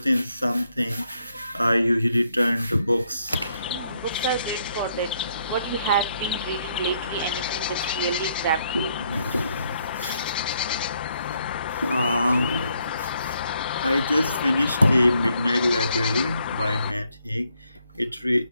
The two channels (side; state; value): both; inverted; correlation -0.73